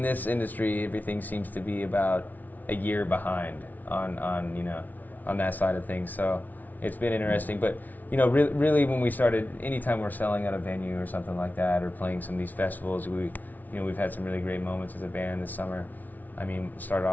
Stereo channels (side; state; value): right; late; 0.079 ms